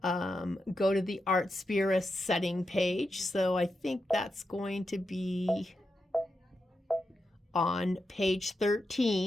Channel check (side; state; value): both; normal; correlation 0.87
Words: go to the Artspira setting page. So I think that's going to be on page